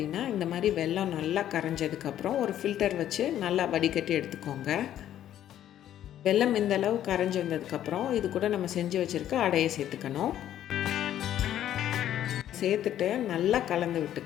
இந்த மாதிரி வெல்லம் நல்லா கரைஞ்சதுக்கப்புறம் ஒரு ஃபில்டர் வச்சு நல்லா வடிகட்டி எடுத்துக்கோங்க. வெல்லம் இந்த அளவு கரைஞ்சி வந்ததுக்கப்புறம் இது கூட நம்ம செஞ்சு வச்சுருக்க அடையை சேர்த்துக்கணும். சேர்த்துட்டு நல்லா கலந்து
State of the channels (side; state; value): right; quieter; 11.5 dB